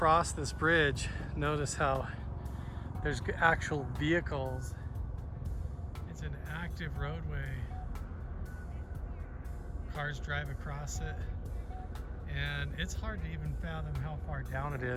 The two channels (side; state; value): both; identical; correlation 1.00